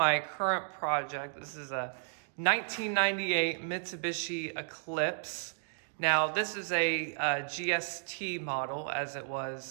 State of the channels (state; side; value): silent; left; digital silence